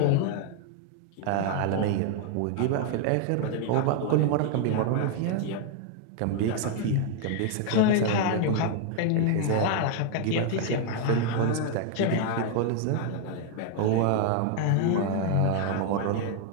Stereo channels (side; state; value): both; different; correlation 0.00